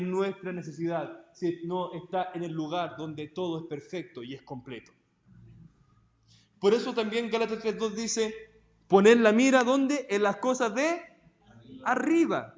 nuestra necesidad, sino está en el lugar donde todo es perfecto y es completo. Por eso también Gálatas 3:2 dice, poner la mira, ¿dónde? En las cosas de arriba,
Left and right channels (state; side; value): identical; both; correlation 1.00